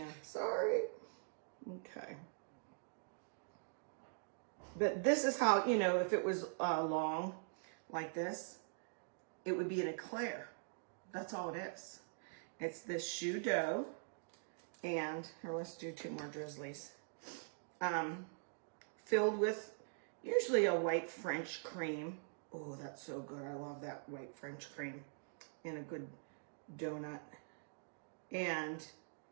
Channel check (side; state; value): left; silent; digital silence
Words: Sorry. Okay. But this is how, you know, if it was long like this, it would be an eclair. That's all it is. It's this shoe dough. And, here, let's do 2 more drizzlies. Filled with usually a white French cream. Oh, that's so good. I love that white French cream in a good donut. And